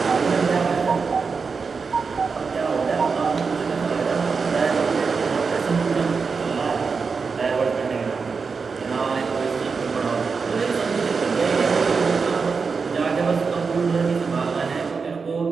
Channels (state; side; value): quieter; left; 5.1 dB